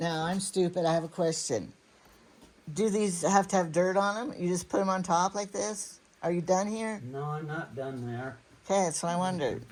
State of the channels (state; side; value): identical; both; correlation 1.00